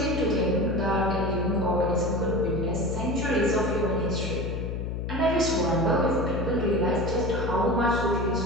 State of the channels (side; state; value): left; noise; hum, 3 dB below the sound